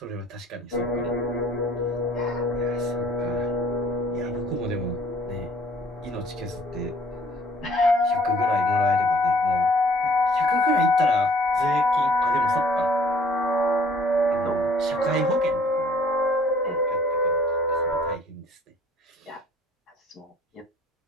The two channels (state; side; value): normal; both; correlation 0.57